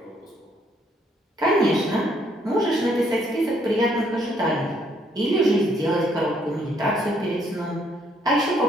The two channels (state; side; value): normal; both; correlation 0.68